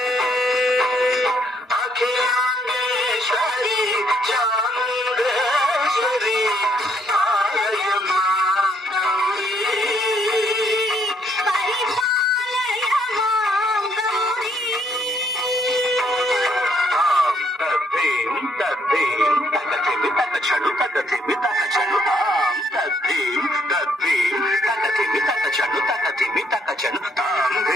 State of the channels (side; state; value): both; normal; correlation 0.69